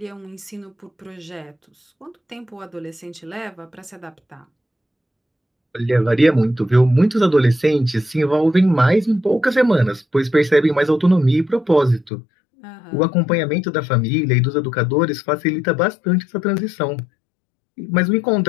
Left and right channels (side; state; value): right; drops out; at 12.1 s